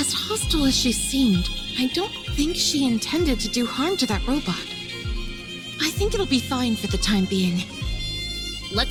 hostile as she seemed, I don't think she intended to do harm to that robot. I think it'll be fine for the time being.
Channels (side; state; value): both; identical; correlation 1.00